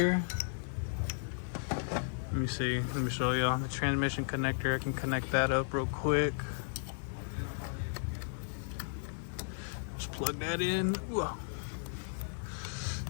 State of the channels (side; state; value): right; silent; digital silence